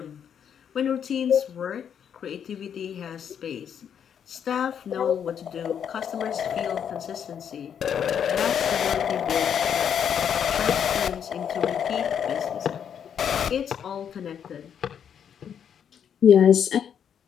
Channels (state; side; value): quieter; right; 8.2 dB